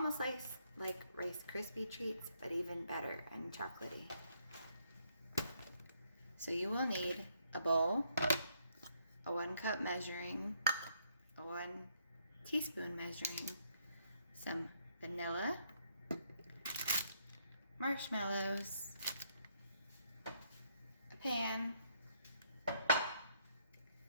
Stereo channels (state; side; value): inverted; both; correlation -0.71